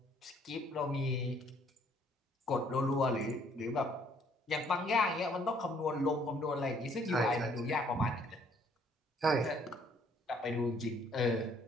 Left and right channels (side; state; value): both; normal; correlation 0.63